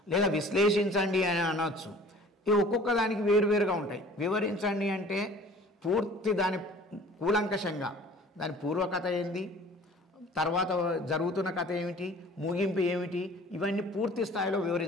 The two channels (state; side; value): normal; both; correlation 0.48